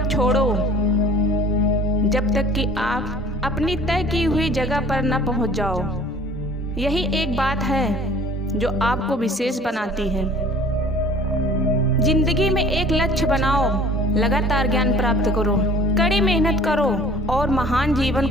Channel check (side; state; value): both; normal; correlation 0.49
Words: छोड़ो जब तक कि आप अपनी तय की हुई जगह पर न पहुंच जाओ। यही एक बात है जो आपको विशेष बनाती है। जिंदगी में एक लक्ष्य बनाओ, लगातार ज्ञान प्राप्त करो, कड़ी मेहनत करो और महान जीवन